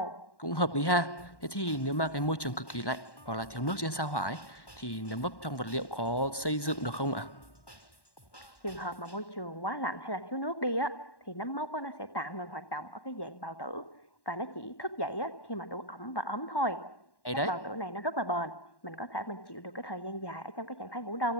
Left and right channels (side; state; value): right; late; 1.1 ms